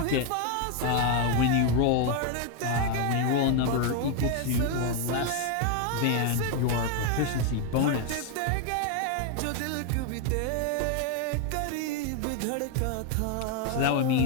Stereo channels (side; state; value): both; different; correlation 0.01